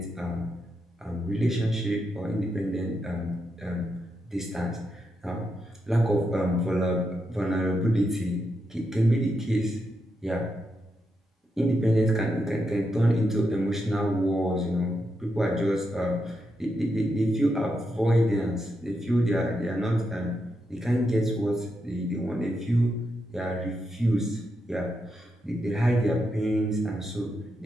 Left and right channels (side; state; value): both; normal; correlation 0.83